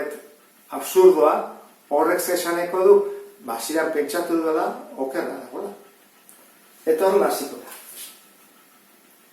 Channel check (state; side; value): identical; both; correlation 1.00